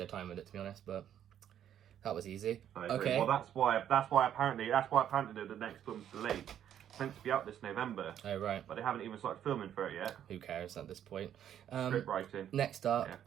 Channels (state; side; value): quieter; left; 10.1 dB